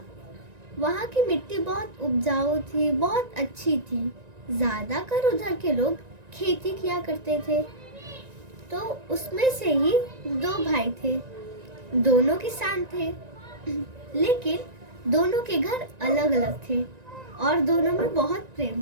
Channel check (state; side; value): late; left; 1.9 ms